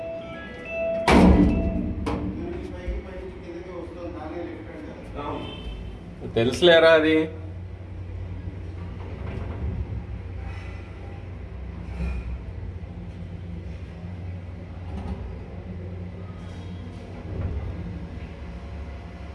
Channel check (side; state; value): both; identical; correlation 1.00